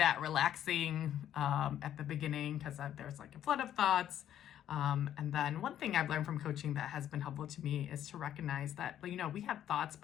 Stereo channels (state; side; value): quieter; right; 10.9 dB